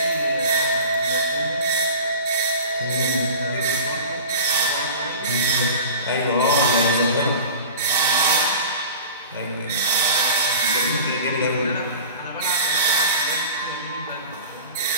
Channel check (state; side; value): inverted; both; correlation -0.38